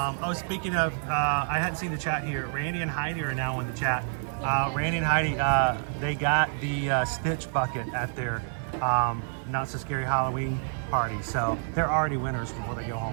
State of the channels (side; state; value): left; silent; 59 dB below the other